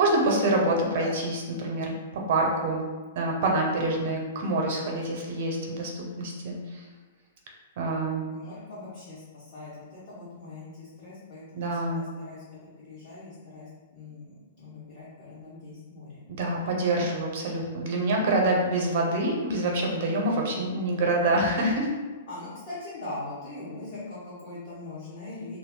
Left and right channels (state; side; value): inverted; both; correlation -0.30